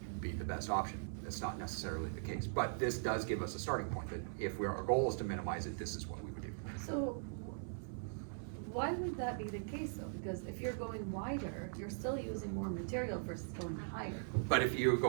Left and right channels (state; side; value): silent; left; 51 dB below the other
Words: be the best option. That's not necessarily the case, but this does give us a starting point that if our goal is to minimize it, this is what we would do. So why would that be the case though? Because if you're going wider, you're still using more material versus going higher. But if you